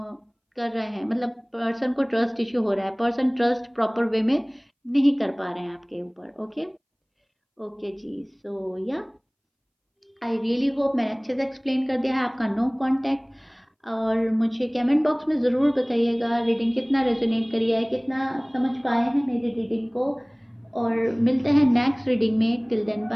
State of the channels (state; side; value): identical; both; correlation 1.00